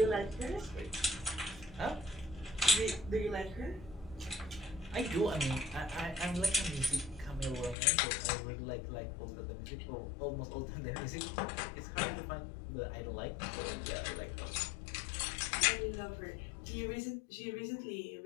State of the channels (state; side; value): drops out; right; at 7.8 s